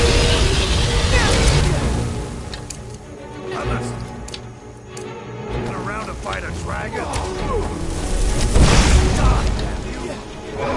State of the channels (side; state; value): both; identical; correlation 1.00